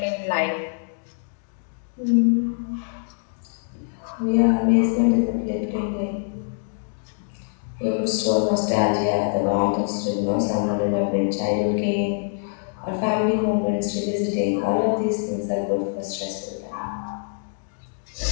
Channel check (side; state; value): right; silent; digital silence